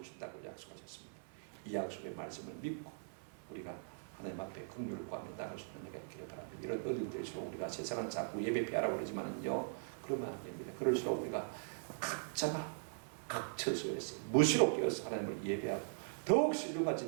약속하셨습니다. 이 약속의 말씀을 믿고 우리가 하나님 앞에 긍휼을 구하며 나갈 수 있는 내가 있기를 바랍니다. 이런 어려움들일수록 우리가 세상은 자꾸 예배 피하라고 그러지만은요, 그러면 안 됩니다. 그럴수록 우리가 각자가 각 처소에서 무시로 깨어서 하나님을 예배하고 더욱 신령과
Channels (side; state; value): left; silent; 51 dB below the other